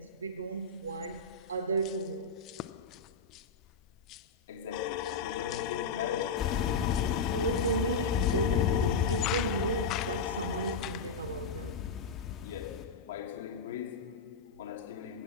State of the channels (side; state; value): right; quieter; 4.3 dB